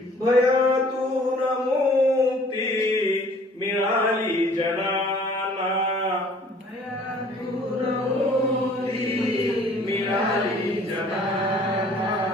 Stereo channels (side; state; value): both; normal; correlation 0.54